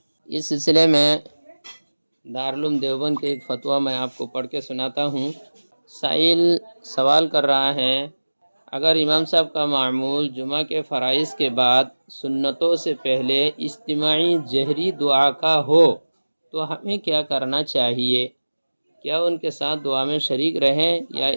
اس سلسلے میں دارالعلوم دیوبند کے ایک فتویٰ میں آپ کو پڑھ کے سناتا ہوں۔ سائل سوال کر رہا ہے، اگر امام صاحب کا معمول جمعہ کے فرائض کے بعد سنتوں سے پہلے اجتماعی جہری دعا کا ہو تو ہمیں کیا کرنا چاہیے؟ کیا ان کے ساتھ دعا میں شریک رہیں یا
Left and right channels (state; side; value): inverted; both; correlation -1.00